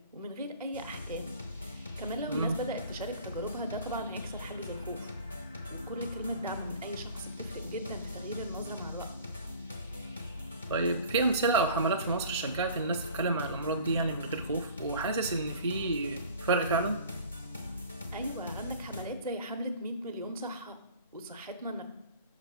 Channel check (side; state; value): both; inverted; correlation -0.46